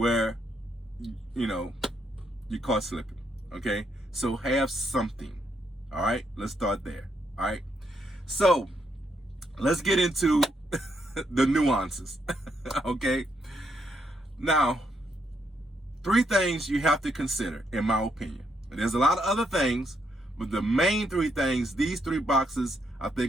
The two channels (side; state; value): both; normal; correlation 0.77